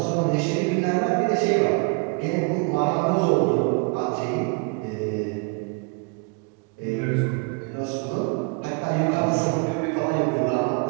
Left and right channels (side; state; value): left; quieter; 32.0 dB